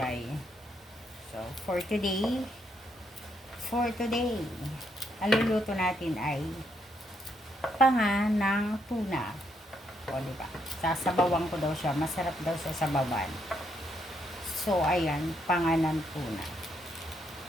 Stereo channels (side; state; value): both; normal; correlation 0.76